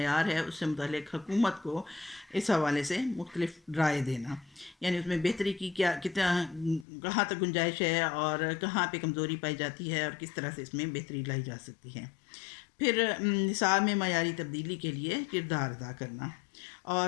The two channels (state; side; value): drops out; right; at 6.9 s